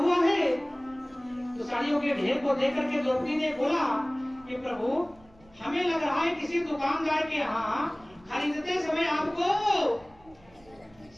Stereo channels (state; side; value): noise; right; rumble, 28 dB below the sound